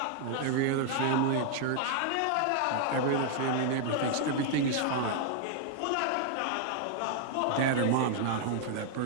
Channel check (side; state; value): both; different; correlation 0.00